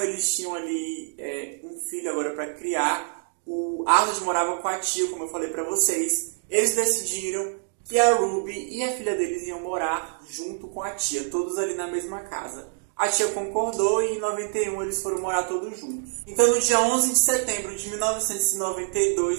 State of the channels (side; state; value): left; silent; digital silence